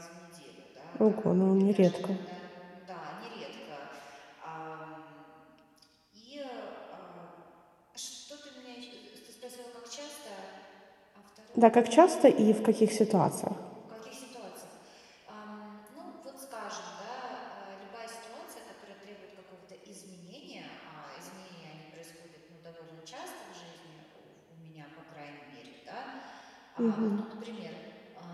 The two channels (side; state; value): both; identical; correlation 1.00